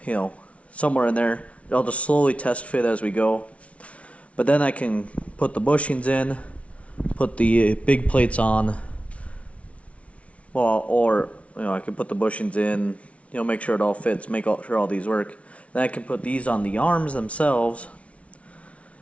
somewhere in there. I'll just slowly test fit as we go, but then I can put the bushings in, put the big plates on, or I can put the bushings in, make sure it all fits, make sure all these work. Then I can put these on the arms themselves,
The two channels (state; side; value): late; right; 0.064 ms